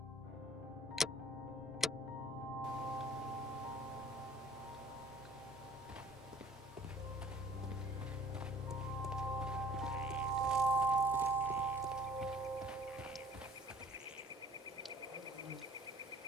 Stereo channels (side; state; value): both; normal; correlation 0.52